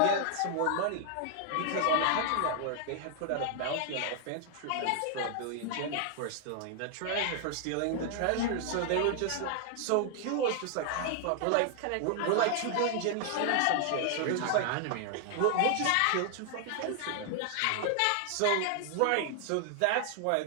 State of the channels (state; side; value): different; both; correlation 0.00